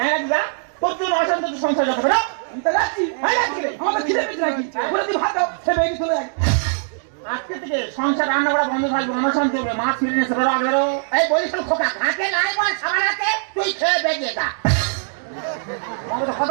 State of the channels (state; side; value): silent; left; digital silence